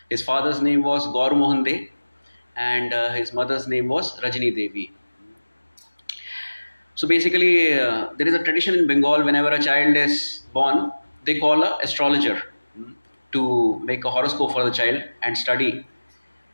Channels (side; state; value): both; inverted; correlation -1.00